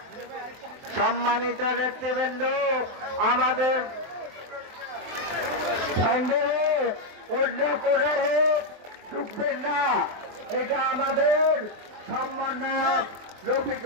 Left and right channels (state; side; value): late; left; 23 ms